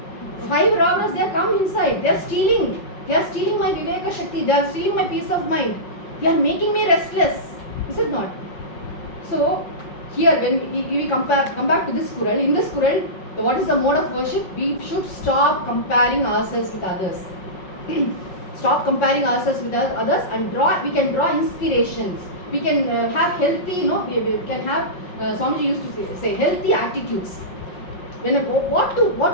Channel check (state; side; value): late; right; 5.3 ms